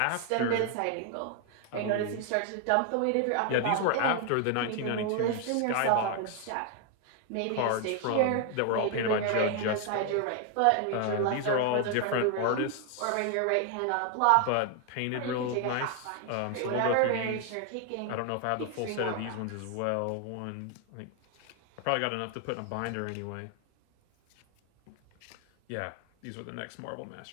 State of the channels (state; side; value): different; both; correlation 0.00